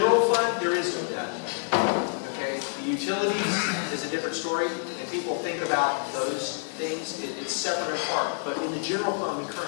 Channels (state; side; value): silent; right; digital silence